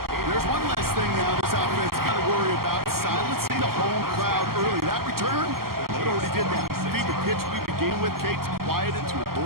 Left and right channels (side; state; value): left; late; 0.93 ms